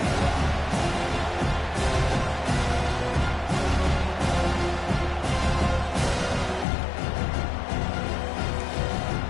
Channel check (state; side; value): drops out; right; at 6.7 s